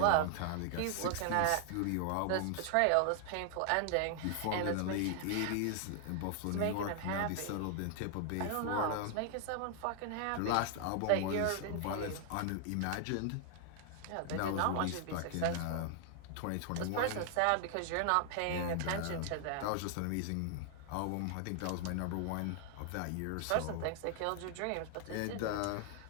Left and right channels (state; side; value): different; both; correlation 0.00